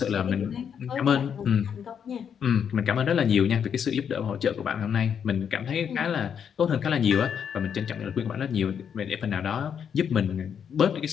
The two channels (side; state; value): right; quieter; 7.8 dB